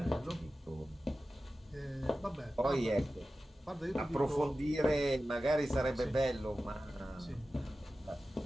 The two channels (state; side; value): normal; both; correlation 0.94